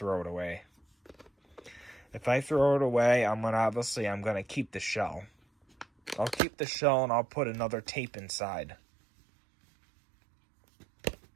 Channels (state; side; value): drops out; left; at 6.4 s